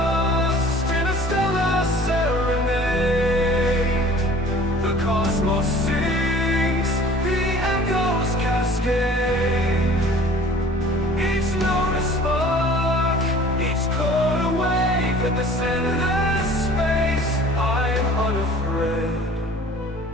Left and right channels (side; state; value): both; normal; correlation 0.48